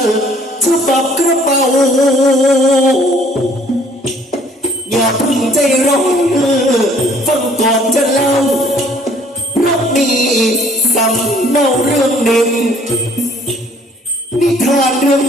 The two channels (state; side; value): normal; both; correlation 0.58